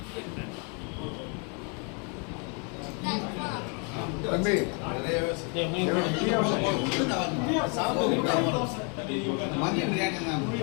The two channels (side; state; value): right; quieter; 36.5 dB